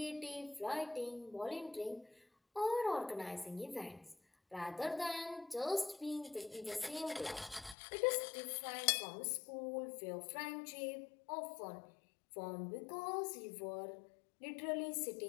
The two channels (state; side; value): drops out; right; at 7.8 s